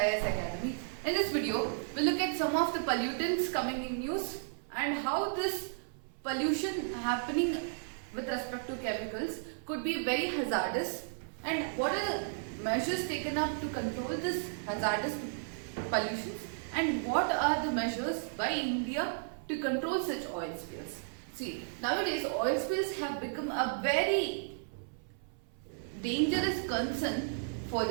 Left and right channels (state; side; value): silent; left; 55 dB below the other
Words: Academy. In this video, we'll look at some of the pollutants coming in news and how this pollution happening with respect to chemicals could be very hazardous, and what are the measures taken up to control this hazardous pollutions, and what are the measures by India to control such oil spills. See, nowadays oil spills have become a very dangerous concern for